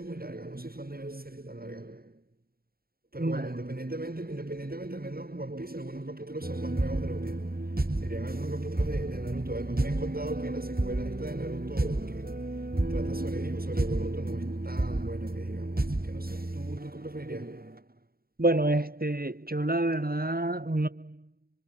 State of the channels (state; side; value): late; left; 0.44 ms